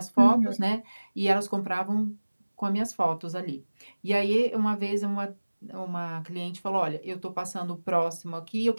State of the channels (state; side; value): inverted; both; correlation -1.00